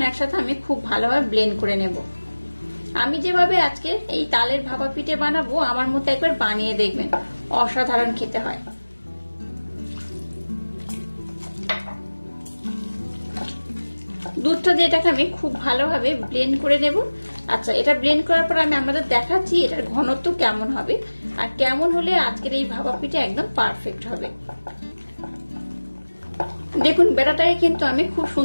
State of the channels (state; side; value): inverted; both; correlation -1.00